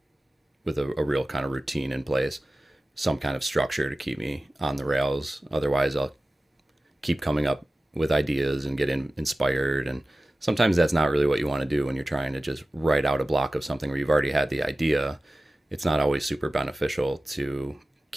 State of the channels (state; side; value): normal; both; correlation 0.96